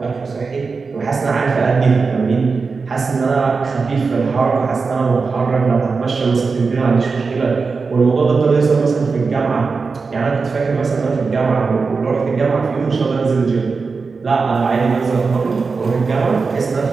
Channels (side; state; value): left; quieter; 4.6 dB